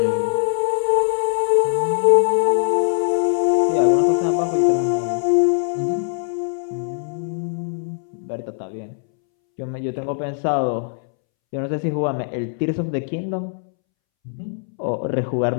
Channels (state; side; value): silent; right; 65 dB below the other